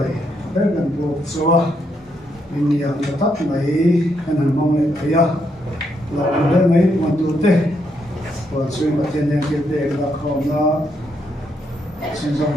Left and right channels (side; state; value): both; normal; correlation 0.77